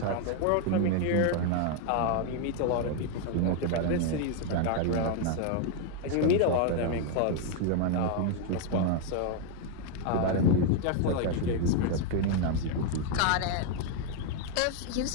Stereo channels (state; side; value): different; both; correlation 0.01